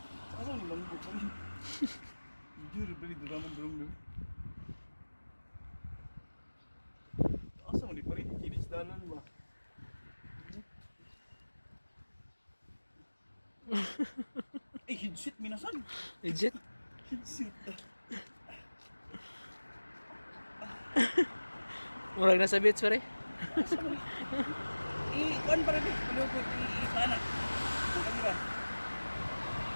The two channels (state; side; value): inverted; both; correlation -1.00